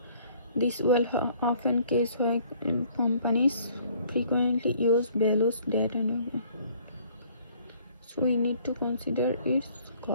This will often case why companies frequently use values data, so we need to consider its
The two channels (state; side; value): inverted; both; correlation -0.58